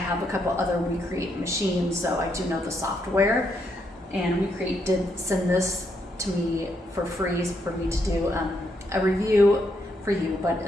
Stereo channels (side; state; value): both; normal; correlation 0.77